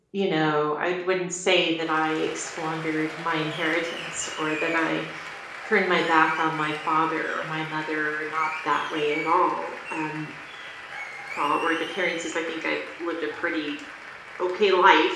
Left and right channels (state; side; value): identical; both; correlation 1.00